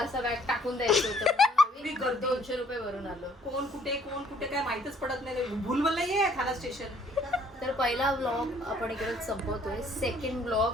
बॅग टाकून द्यायचं होतं. आम्ही 200 रुपये भरून आलो. कोण कुठे काय माहितच पडत नाही. भूलभुलैया आहे ठाणा स्टेशन. तर पहिला व्लॉग आपण इकडेच संपवतोय. सेकंड व्लॉग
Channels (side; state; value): both; normal; correlation 0.61